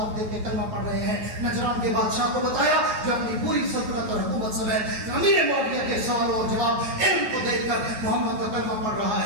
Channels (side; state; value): left; late; 9.3 ms